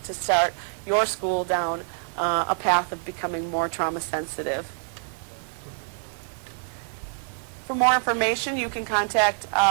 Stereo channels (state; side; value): silent; left; digital silence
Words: to start your school down a path of becoming more trauma sensitive. For more information, you can contact,